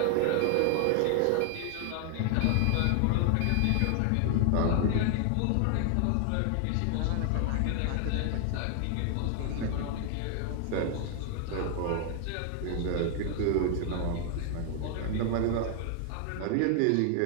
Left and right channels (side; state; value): both; different; correlation 0.00